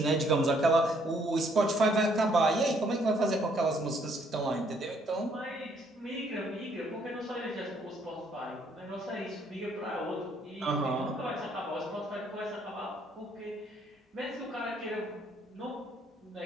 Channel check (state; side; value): normal; both; correlation 0.67